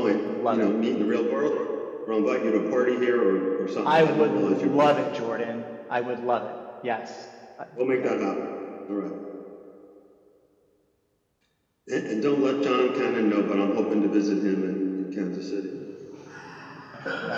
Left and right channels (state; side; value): identical; both; correlation 1.00